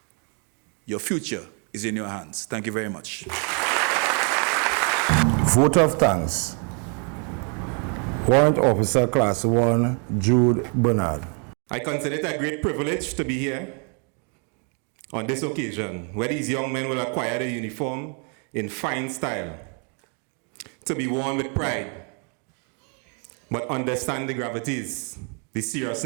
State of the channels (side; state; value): left; quieter; 38.4 dB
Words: Your future is in your hands. Thank you very much. Vote of thanks. Warrant Officer Class 1, Jude Bernard. I consider it a great privilege to be here on this occasion, where these young men will acquire the uniform in fine style, to be worn with pride, but understand the gravities, the